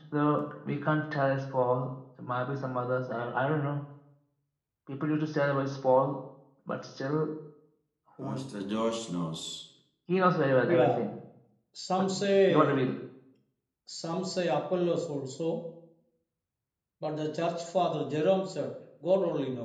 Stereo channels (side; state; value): both; identical; correlation 1.00